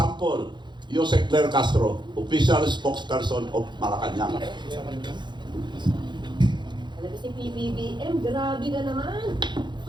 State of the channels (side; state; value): left; late; 0.22 ms